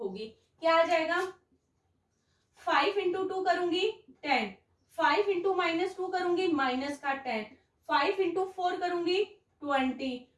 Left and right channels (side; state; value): both; identical; correlation 1.00